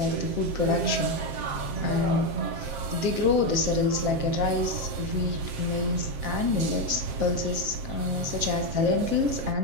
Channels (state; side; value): late; left; 7.6 ms